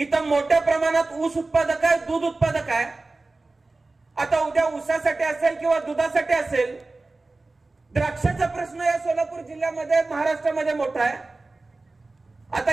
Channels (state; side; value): quieter; left; 3.3 dB